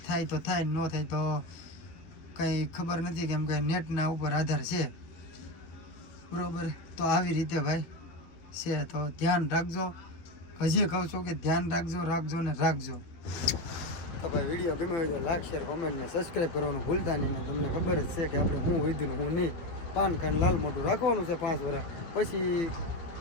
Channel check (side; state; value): right; late; 12 ms